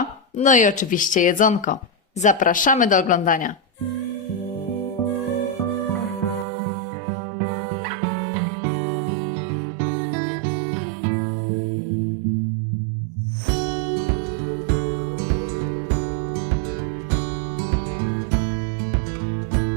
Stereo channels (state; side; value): drops out; left; at 6.5 s